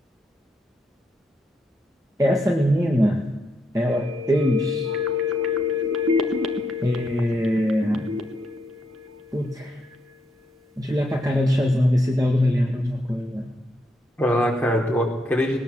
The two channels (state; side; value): normal; both; correlation 0.78